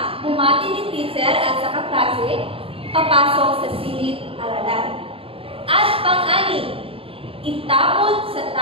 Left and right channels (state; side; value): late; left; 0.27 ms